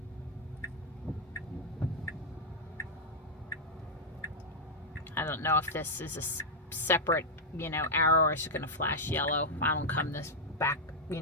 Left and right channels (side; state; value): both; normal; correlation -0.02